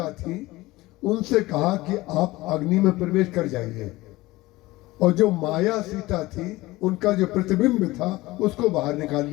थी उनसे कहा कि आप अग्नि में प्रवेश कर जाइए, और जो माया सीता थी उनका जो प्रतिबिंब था उसको बाहर निकाल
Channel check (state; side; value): quieter; right; 19.4 dB